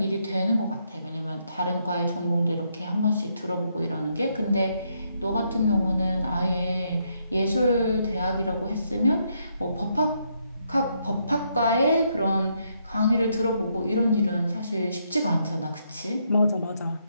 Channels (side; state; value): both; inverted; correlation -0.76